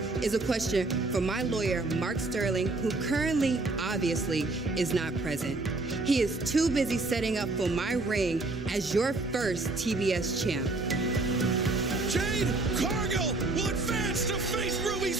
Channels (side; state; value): left; quieter; 3.2 dB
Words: is a question for my lawyer, Mark Sterling, who currently, obviously, is not present. He is too busy setting up for my ring as your first TBS champ. Jade Cargill will advance to face Ruby